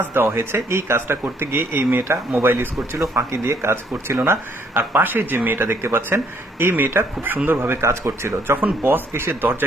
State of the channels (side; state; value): both; normal; correlation 0.67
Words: দেওয়া হয়েছে। এই কাজটা করতে গিয়ে এই মেয়েটা মোবাইল ইউজ করছিল, ফাঁকি দিয়ে কাজ করছিল না। আর পাশে যে মেয়েটা দেখতে পাচ্ছেন, এই মেয়েটা খুব সুন্দরভাবে কাজ করছিল। যখন বস এসে